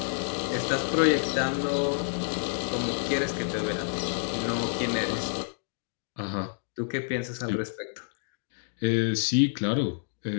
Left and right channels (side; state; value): right; silent; digital silence